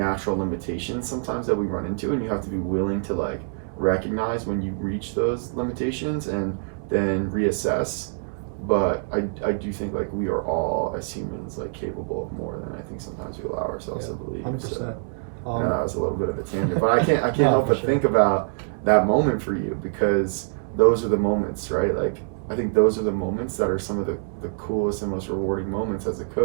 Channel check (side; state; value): left; silent; 61 dB below the other